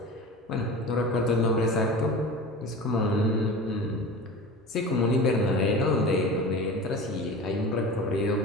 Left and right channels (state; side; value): normal; both; correlation 0.34